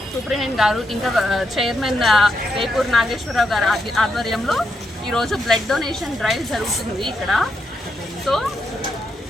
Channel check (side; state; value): both; normal; correlation 0.81